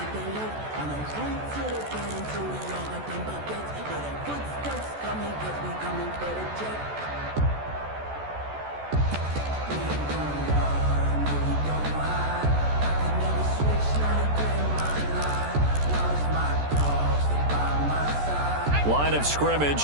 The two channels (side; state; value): left; late; 14 ms